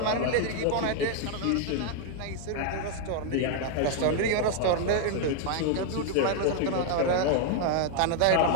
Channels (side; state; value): both; different; correlation 0.00